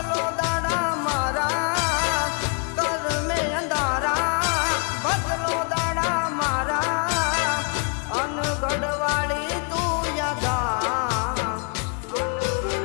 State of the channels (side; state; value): right; quieter; 38.6 dB